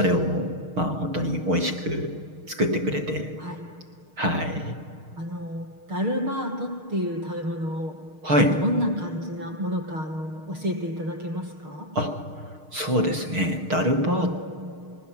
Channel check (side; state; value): left; late; 6.5 ms